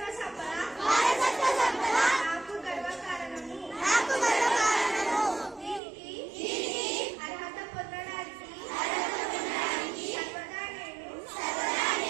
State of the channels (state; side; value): drops out; left; at 5.8 s